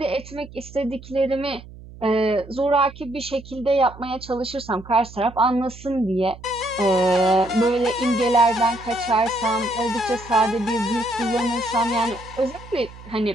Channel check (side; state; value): right; noise; hum, 17 dB below the sound